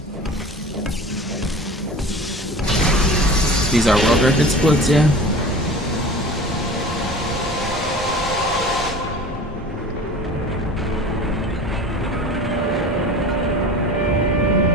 These are world record splits, yeah.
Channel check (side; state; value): both; normal; correlation 0.38